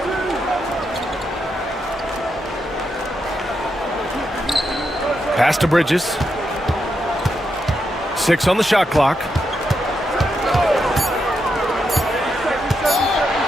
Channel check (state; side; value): normal; both; correlation 0.83